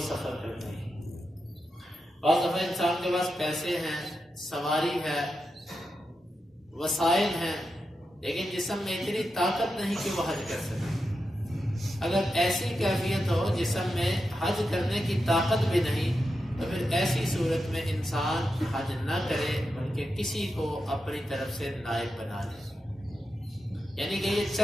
سفر کرنے کی۔ بعض دفعہ انسان کے پاس پیسے ہیں، سواری ہے، وسائل ہیں، لیکن جسم میں اتنی طاقت نہیں کہ وہ حج کر سکے۔ اگر ایسی کیفیت ہو جسم میں حج کرنے کی طاقت بھی نہیں تو پھر ایسی صورت میں انسان حج نہ کرے بلکہ کسی کو اپنی طرف سے نائب بنا لے۔ یعنی کہ یہ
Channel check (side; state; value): both; normal; correlation 0.88